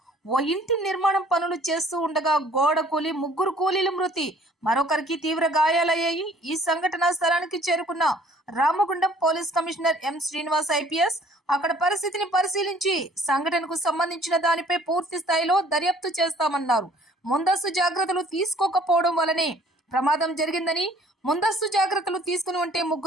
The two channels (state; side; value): normal; both; correlation 0.55